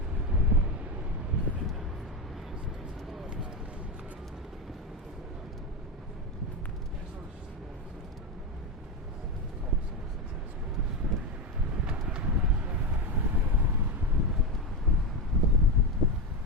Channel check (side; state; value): both; normal; correlation 0.13